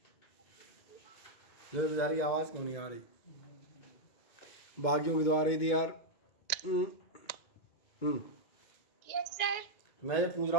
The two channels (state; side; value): late; right; 2.2 ms